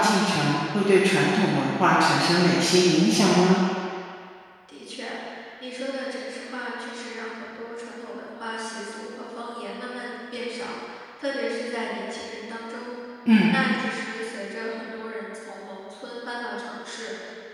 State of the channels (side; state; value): both; identical; correlation 1.00